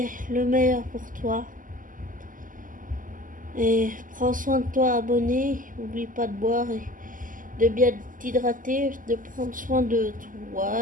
le meilleur pour toi. Et prends soin de toi, abonné. N'oublie pas de boire et de bien t'hydrater, de prendre soin de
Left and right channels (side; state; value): left; late; 0.39 ms